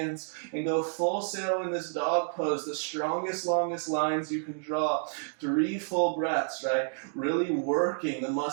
and go full sail in this dog pose, the strongest, longest lines you can draw. 3 full breaths, right? Really working the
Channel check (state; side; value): silent; left; digital silence